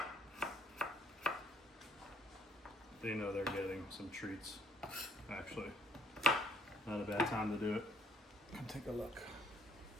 They know they're getting some treats. Actually, not a bad time to do it. Come take a look.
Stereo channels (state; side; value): normal; both; correlation 0.66